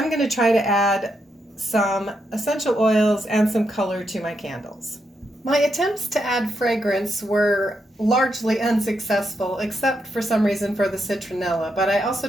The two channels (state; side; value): normal; both; correlation 0.82